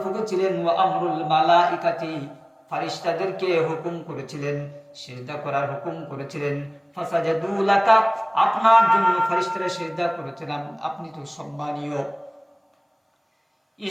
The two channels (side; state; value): both; identical; correlation 1.00